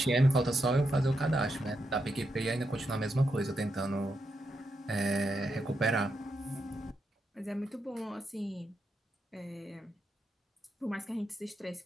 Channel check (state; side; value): normal; both; correlation 0.83